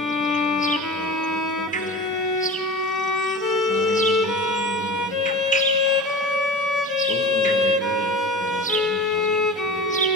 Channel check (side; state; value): both; normal; correlation 0.33